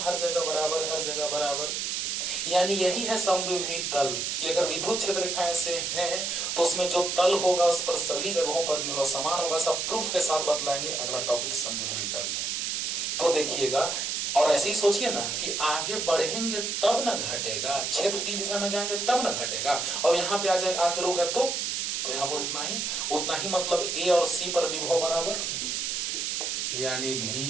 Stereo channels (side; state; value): right; noise; hiss, 1 dB below the sound